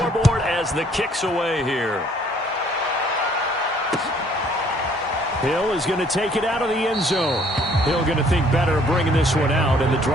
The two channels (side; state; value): both; normal; correlation 0.61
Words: as the kick's away here. Hill is going to take it out of the end zone. Hill going to think better of bringing this one out, and the